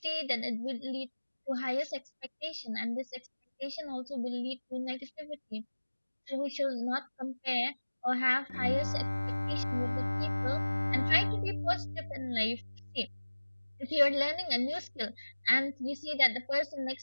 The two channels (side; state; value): both; inverted; correlation -1.00